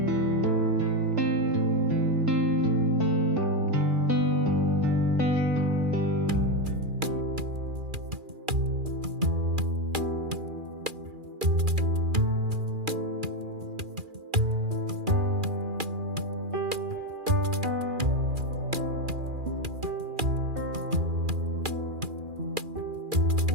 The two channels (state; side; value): late; left; 2.4 ms